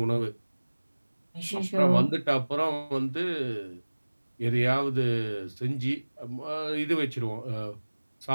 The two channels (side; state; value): both; inverted; correlation -1.00